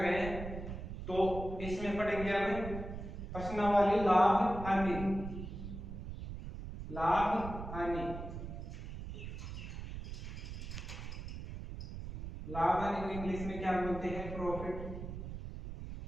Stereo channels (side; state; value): right; noise; rumble, 8 dB below the sound